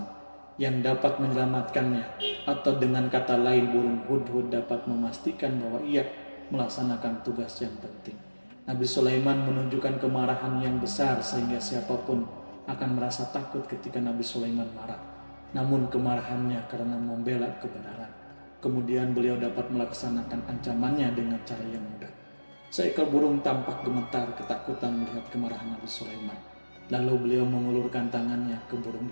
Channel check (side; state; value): both; inverted; correlation -1.00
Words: yang dapat menyelamatkannya, atau dengan kata lain burung hudhud dapat memastikan bahwa ia melaksanakan tugas yang penting. Nabi Sulaiman menunjukkan kemarahan yang besar sehingga siapapun akan merasa takut ketika Nabi Sulaiman marah. Namun kemarahannya karena membela kebenaran. Kemudian beliau dapat melaksanakan ancamannya dengan cara yang mudah. Seekor burung tampak gemetar ketakutan melihat kemarahan Nabi Sulaiman. Lalu beliau mengulurkan tangannya ke burung